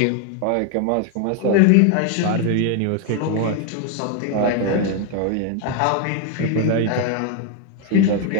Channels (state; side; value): different; both; correlation 0.01